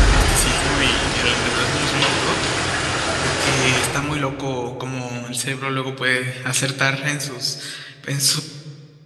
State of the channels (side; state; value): both; identical; correlation 1.00